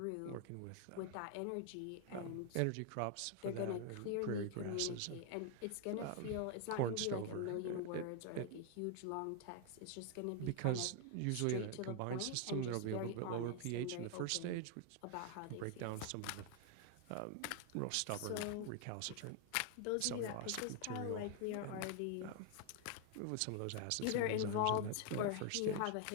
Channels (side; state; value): both; different; correlation 0.00